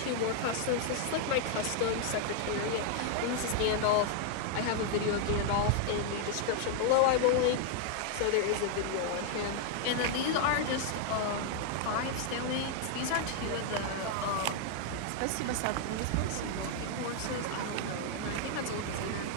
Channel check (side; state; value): both; different; correlation 0.00